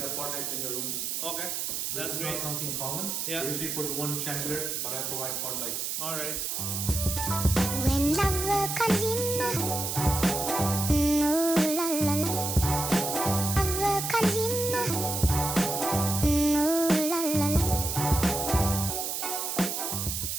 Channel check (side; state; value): right; noise; hiss, 2 dB below the sound